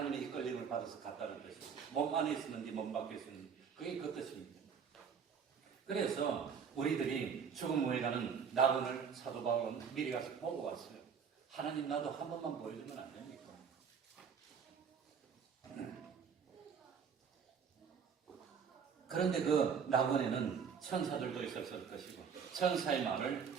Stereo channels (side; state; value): left; quieter; 6.7 dB